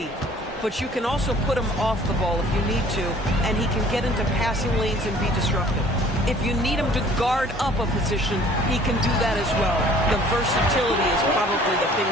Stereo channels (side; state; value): both; normal; correlation 0.53